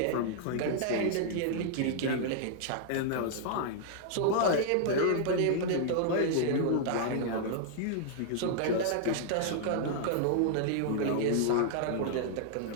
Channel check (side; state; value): both; different; correlation -0.01